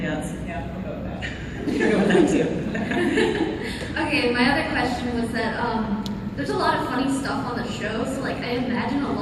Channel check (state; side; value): identical; both; correlation 1.00